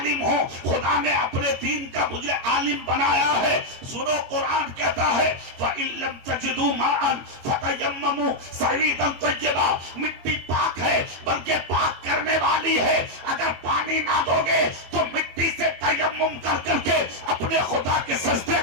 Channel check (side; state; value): left; late; 22 ms